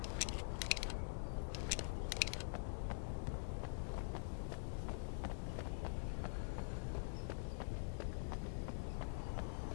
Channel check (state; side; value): silent; right; digital silence